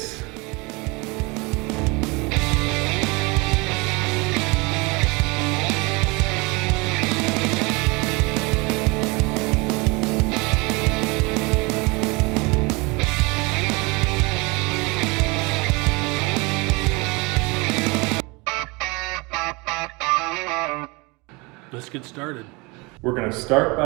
Let's get started. We're going to start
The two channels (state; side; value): quieter; left; 26.5 dB